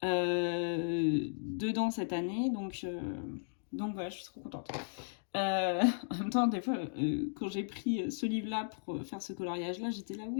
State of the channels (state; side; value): silent; right; digital silence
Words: dedans cette année. Donc voilà, je suis trop contente. En même temps, des fois, quand j'ai pris ce livre-là pour faire ce coloriage-là, j'étais là,